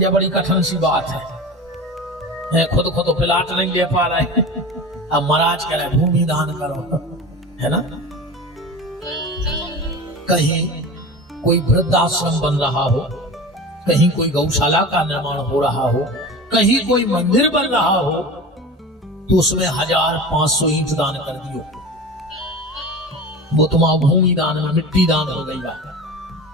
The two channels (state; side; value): normal; both; correlation 0.32